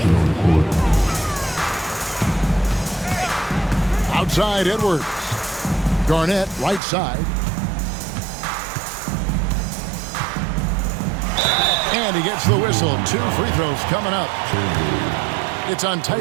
on the court. Outside Edwards. Garnett right side. And he gets the whistle. 2 free throws coming up. It's on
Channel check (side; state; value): left; drops out; at 6.8 s